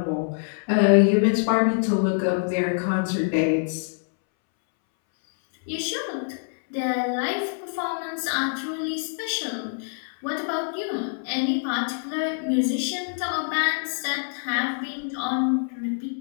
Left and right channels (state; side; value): silent; right; 62 dB below the other